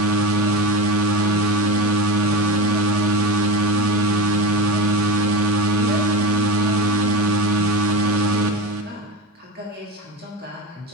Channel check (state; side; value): normal; both; correlation 0.23